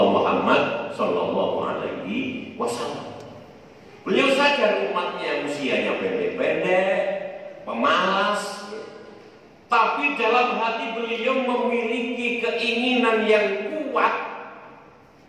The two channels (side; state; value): both; identical; correlation 1.00